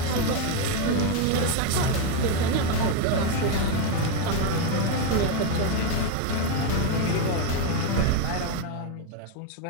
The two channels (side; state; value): both; different; correlation 0.01